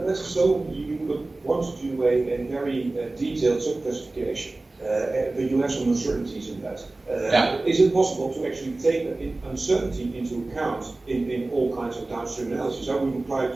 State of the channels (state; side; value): quieter; left; 3.1 dB